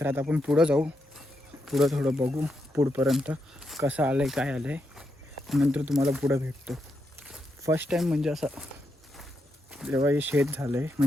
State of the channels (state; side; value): normal; both; correlation 0.83